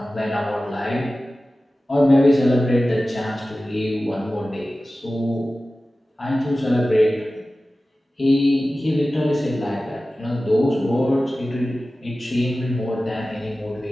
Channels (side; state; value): both; normal; correlation 0.96